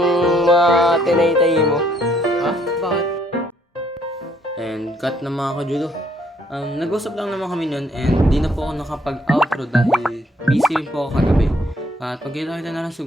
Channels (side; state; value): both; normal; correlation 0.67